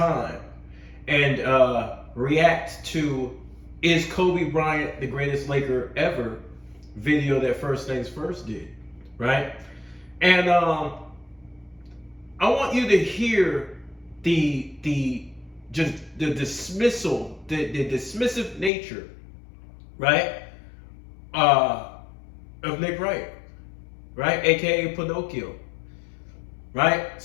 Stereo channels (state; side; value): drops out; right; at 18.7 s